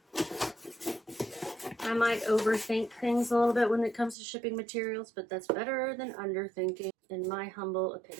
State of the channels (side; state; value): left; drops out; at 4.2 s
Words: I might overthink things a little bit when it comes to shipping materials, but that's better than underthinking, in my humble